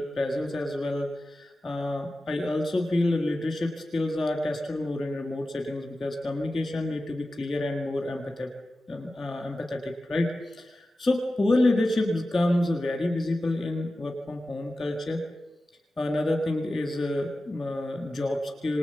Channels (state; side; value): normal; both; correlation 0.94